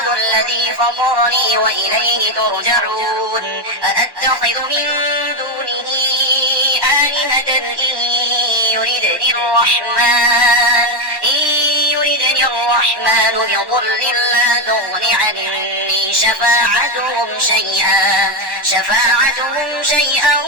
الذي فطرني وإليه ترجعون أأتخذ من دونه آلهة إن يردني الرحمن بضر لا تغن عني شفاعتهم شيئا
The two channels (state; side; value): late; left; 1.1 ms